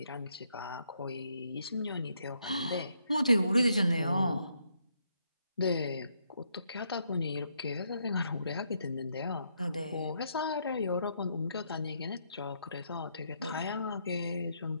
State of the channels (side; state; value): both; inverted; correlation -0.75